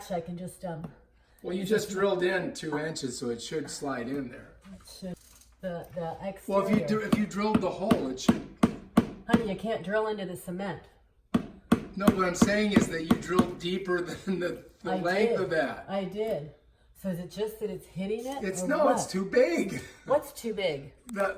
can just Well, you just drilled in 2 inches, so it should slide in there. the exterior. Well, if you drilled the hole, it should. Honey, you can't drill into the cement. No, what I'm saying is that you drilled deeper than the I length did. of that. I did. So is it just that it's hitting it? It's or no, what? it's too big. What's too big?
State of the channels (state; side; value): identical; both; correlation 1.00